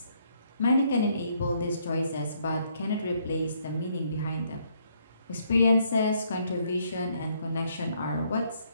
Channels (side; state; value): both; inverted; correlation -0.70